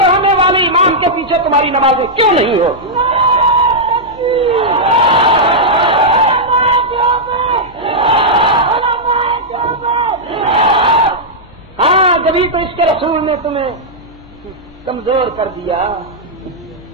ہونے والے امام کے پیچھے تمہاری نمازیں کیوں نہیں ہوتی؟ ہاں جبھی تو اس کے رسول نے تمہیں کمزور کر دیا.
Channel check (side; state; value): both; normal; correlation -0.07